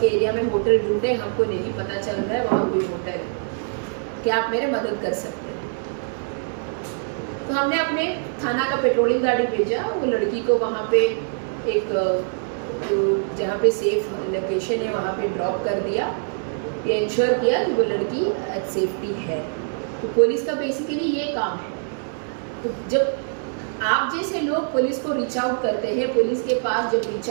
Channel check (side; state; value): left; silent; 60 dB below the other